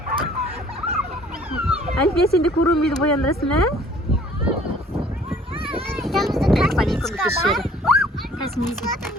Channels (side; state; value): both; normal; correlation 0.55